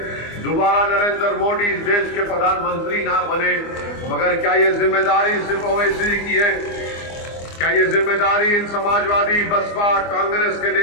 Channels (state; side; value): late; right; 24 ms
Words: दोबारा नरेंद्र मोदी इस देश के प्रधानमंत्री ना बने। मगर क्या ये जिम्मेदारी सिर्फ ओवैसी की है? क्या ये जिम्मेदारी इन समाजवादी, बसपा, कांग्रेस के